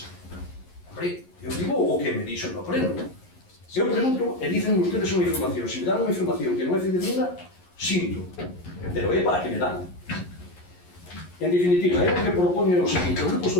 Hombre, eu digo o que me dixo no pleno. Eu pregunto e dicen ustedes unha información. Se me dan unha información que non é fidedigna, sinto. Pero é para que me dan. En definitiva, é o que propone o seguinte. O Grupo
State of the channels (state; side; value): late; right; 11 ms